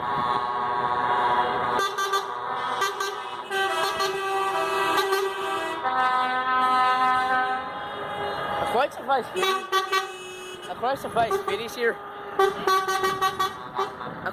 Quite surprised I'm quite surprised Biddy's here. I'm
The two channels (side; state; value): both; identical; correlation 1.00